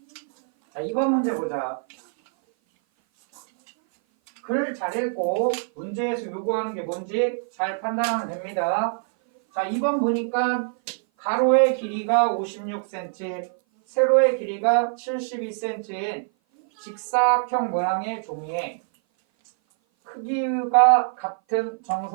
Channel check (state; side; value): silent; left; 57 dB below the other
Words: 자, 2번 문제 보자. 글 잘 읽고 문제에서 요구하는 게 뭔지 잘 판단하면 됩니다. 자, 2번 보니까 가로의 길이가 56cm, 세로의 길이가 72cm인 직사각형 모양의 종이에 크기가 같은